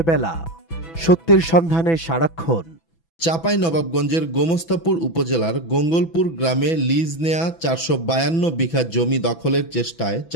বেলা, সত্যের সন্ধানে সারাক্ষণ। চাঁপাইনবাবগঞ্জের গোমস্তাপুর উপজেলার গঙ্গলপুর গ্রামে লিজ নেয়া 452 বিঘা জমি দখলের চেষ্টায়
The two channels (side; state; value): right; late; 6.0 ms